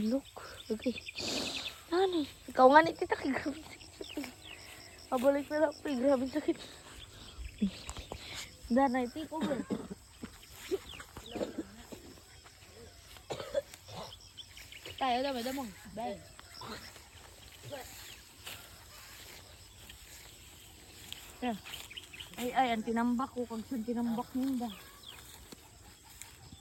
look. Okay. Nani? Ikaw nga ni tita kay grabe sakit. Pabalik na lang po, grabe sakit. Danay, tiko ba? Tayo daw, may damang. Bye. Ay, ang tinambak ko. Kung saan tinambak niyo ba?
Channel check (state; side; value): identical; both; correlation 1.00